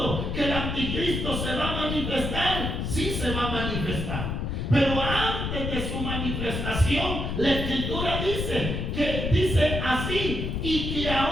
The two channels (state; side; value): noise; left; rumble, 2 dB below the sound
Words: que el anticristo se va a manifestar, sí se va a manifestar. Pero antes de su manifestación, la Escritura dice así, y que